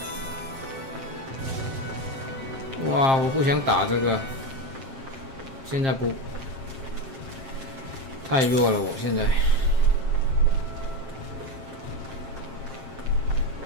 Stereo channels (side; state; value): left; late; 7.5 ms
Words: 哇，我不想打这个，现在不太弱了，我现在。